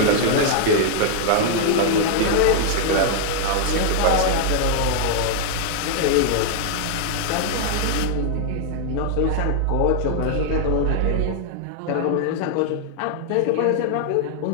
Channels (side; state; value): both; different; correlation -0.01